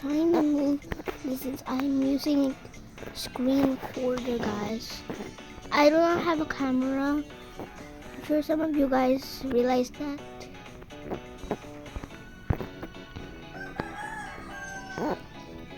to move this since I'm using screen recorder, guys. I do not have a camera. I'm sure some of you guys realize that.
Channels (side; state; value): both; identical; correlation 1.00